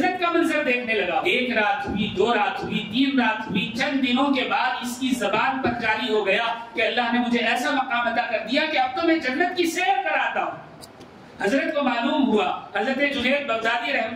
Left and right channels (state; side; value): identical; both; correlation 1.00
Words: کا منظر دیکھنے لگا۔ 1 رات ہوئی، 2 رات ہوئی، 3 رات ہوئی، چند دنوں کے بعد اس کی زبان پر جاری ہو گیا کہ اللہ نے مجھے ایسا مقام عطا کر دیا کہ اب تو میں جنت کی سیر کراتا ہوں۔ حضرت کو معلوم ہوا، حضرت جنید بغدادی